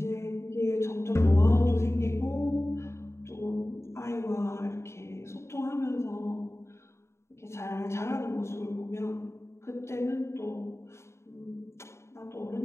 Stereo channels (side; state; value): right; late; 0.13 ms